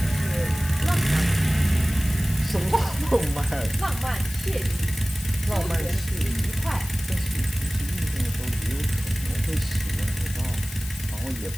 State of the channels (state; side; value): noise; left; hiss, 13 dB below the sound